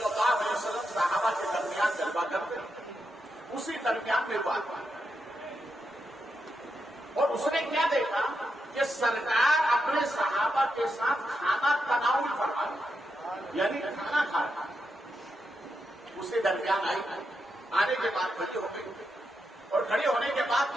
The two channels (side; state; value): both; normal; correlation 0.85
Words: اللہ علیہ وسلم صحابہ کے درمیان جلوہ کرتے اسی درمیان میں بات اور اس نے کیا دیکھا کہ سرکار اپنے صحابہ کے ساتھ کھانا تناول فرما رہا یعنی کھانا کھا رہا. اسے درمیان آئی آنے کے بعد کھڑی ہو گئی اور کھڑی ہونے کے بعد